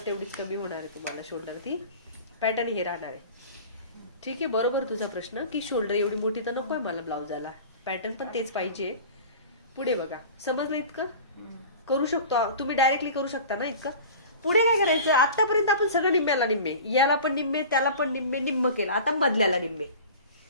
तेवढीच कमी होणार आहे तुम्हाला. शोल्डर ती पॅटर्न हे राहणार आहे. ठीक आहे, बरोबर तुझा प्रश्न की शोल्डर एवढी मोठी तर नकोय मला ब्लाउजाला, पॅटर्न पण तेच पाहिजे. पुढे बघा, समजलं? इतकं करू शकतो तुम्ही, डायरेक्टली करू शकता ना इतकं. पुढे काय करायचं? आतापर्यंत आपण सगळं निम्म्याला निम्मे, याला पण निम्मे, त्याला पण निम्मे, निम्म केलं. आता मधल्याला निम्मे.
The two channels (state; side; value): inverted; both; correlation -0.38